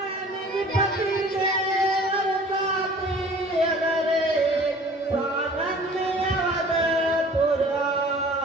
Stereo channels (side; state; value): both; normal; correlation 0.48